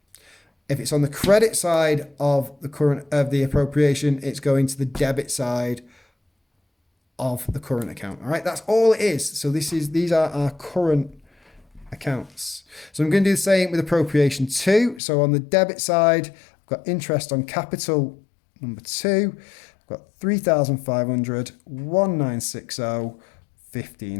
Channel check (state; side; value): drops out; right; at 15.0 s